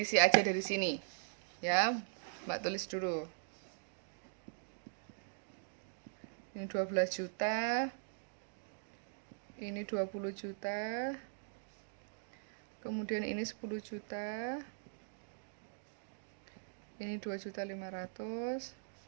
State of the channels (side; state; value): left; silent; digital silence